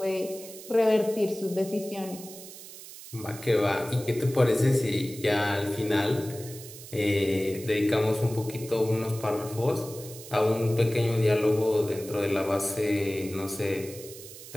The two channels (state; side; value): noise; right; hiss, 15 dB below the sound